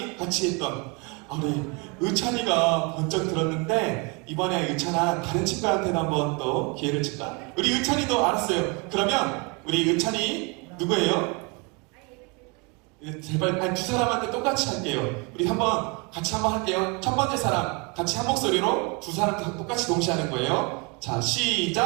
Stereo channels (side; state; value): left; quieter; 30.7 dB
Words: 같이 했던 우리 의찬이가 번쩍 들었는데 이번에 의찬아 다른 친구한테도 한번 또 기회를 줄까? 우리 의찬이도 알았어요. 그러면 우리 의찬이 누구예요? 제발 두 사람한테 똑같이 할게요. 우리 같이 한번 할게요. 첫 번째 사람 같이 한 목소리로 두 사람 똑같이 동시에 하는 거예요. 자,